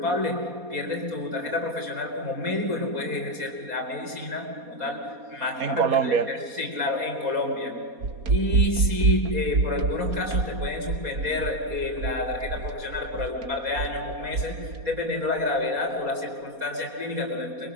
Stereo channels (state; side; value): late; left; 4.2 ms